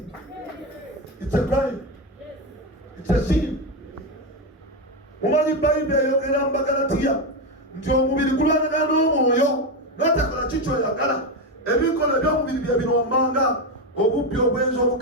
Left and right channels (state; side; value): normal; both; correlation 0.12